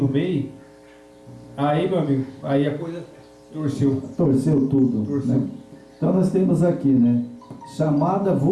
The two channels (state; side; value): identical; both; correlation 1.00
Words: meio, aí, meu amigo, aí a coisa torceu. Torceu tudo. Torceu. Né? Então nós temos aqui, né? Chamada